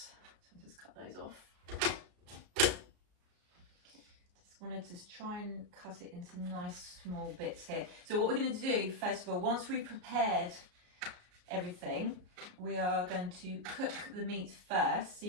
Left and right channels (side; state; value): left; late; 33 ms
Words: I'll just cut those off. Wanted to try and cut it into nice small bits here. So what we're going to do, first of all, once we've prepared everything, we are going to cook the meat first. So